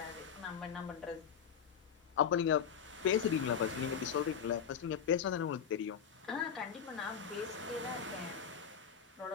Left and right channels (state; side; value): quieter; right; 7.6 dB